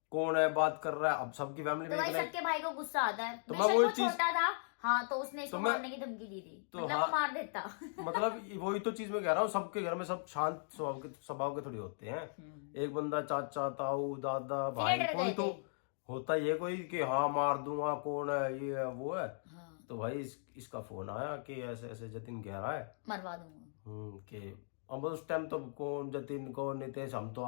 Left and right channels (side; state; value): right; silent; digital silence